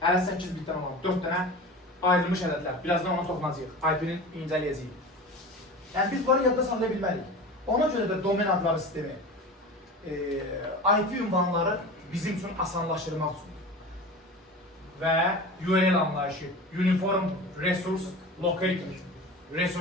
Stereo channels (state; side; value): normal; both; correlation 0.33